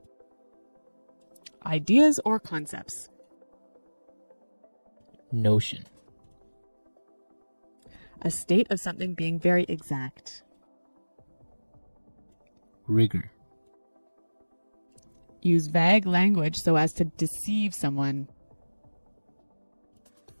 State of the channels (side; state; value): both; inverted; correlation -1.00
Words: Ideas or concepts. Notion. A state of something being very exact. Rigor. Use vague language so as to deceive someone.